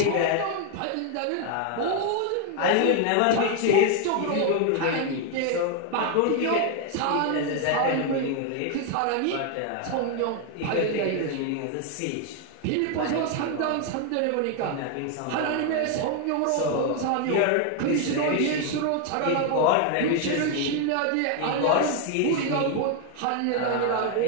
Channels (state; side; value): different; both; correlation 0.01